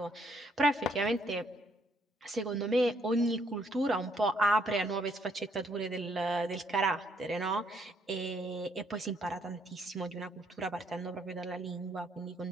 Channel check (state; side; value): normal; both; correlation 0.70